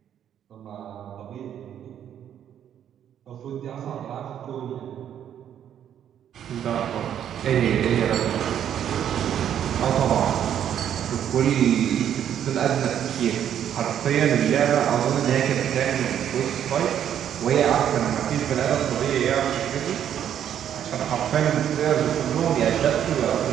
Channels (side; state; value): left; quieter; 9.8 dB